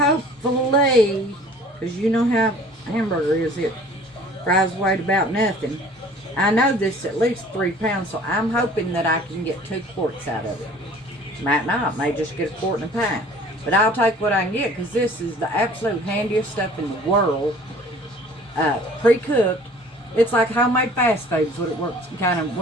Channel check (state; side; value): normal; both; correlation 0.50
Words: because you know how hamburger is, it fries away to about nothing. I know this is at least 3 pounds, so I'm hoping that I can get 2 quarts out of it. Might not, may just get a quart and a pint. But I'll take what I can get, because this is the absolute handiest stuff in the world. Pre-cooked. It's like homemade fast foods, what it works, kind of